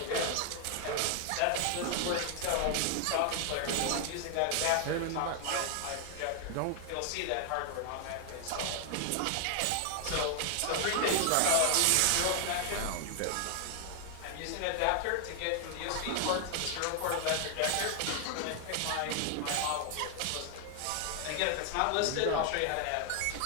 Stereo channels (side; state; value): both; different; correlation 0.00